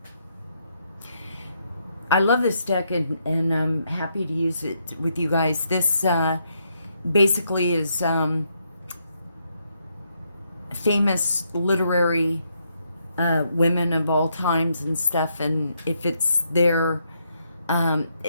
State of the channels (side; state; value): both; inverted; correlation -0.77